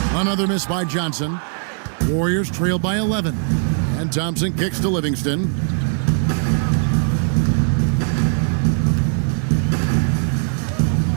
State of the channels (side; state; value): left; silent; digital silence